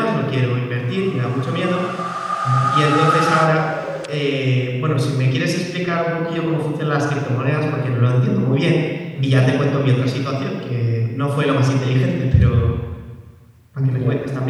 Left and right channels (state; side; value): identical; both; correlation 1.00